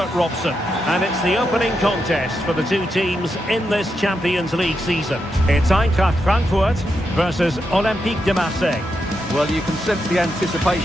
Robson. And it's the opening contest for the two teams in this Champions League season. It's Eintracht Frankfurt versus Olympique de Marseille. Well, you can sense the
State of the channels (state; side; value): normal; both; correlation 0.84